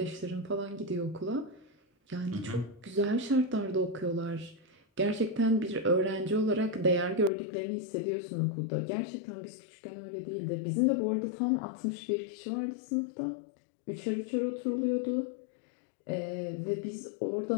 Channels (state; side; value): drops out; right; at 7.3 s